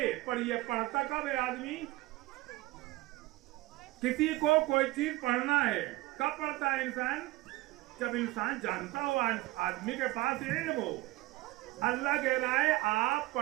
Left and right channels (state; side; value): quieter; left; 19.3 dB